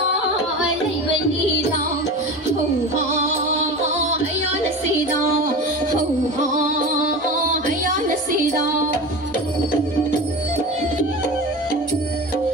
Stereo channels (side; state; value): both; normal; correlation 0.30